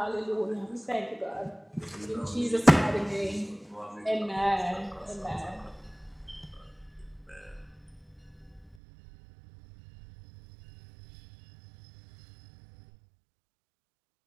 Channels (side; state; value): left; drops out; at 8.8 s